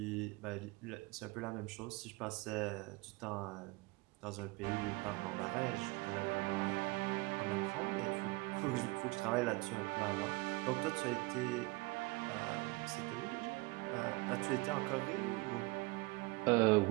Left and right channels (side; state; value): left; quieter; 24.6 dB